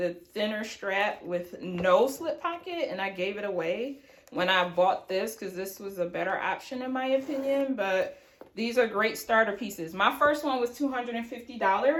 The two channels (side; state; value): both; identical; correlation 1.00